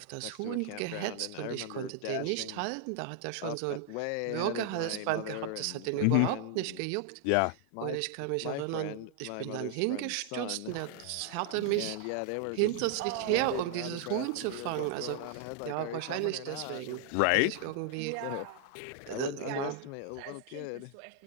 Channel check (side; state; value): both; different; correlation 0.00